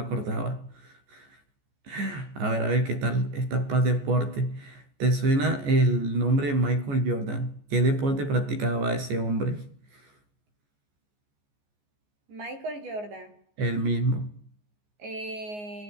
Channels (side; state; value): left; late; 14 ms